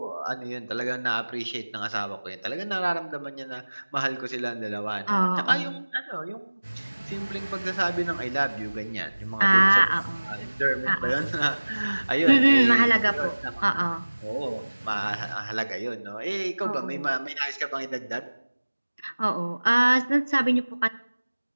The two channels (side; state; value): both; inverted; correlation -1.00